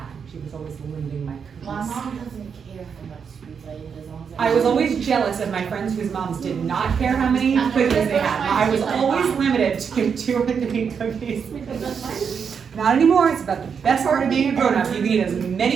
She was always limiting my cookies. My mom doesn't care how much sweets I eat as long as I was always jealous of my friends whose moms did not care how many cookies they had. I was always limited to 2 or 3 cookies. Not anymore. It's about the best part of being a grown-up. You can eat as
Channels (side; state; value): left; quieter; 6.6 dB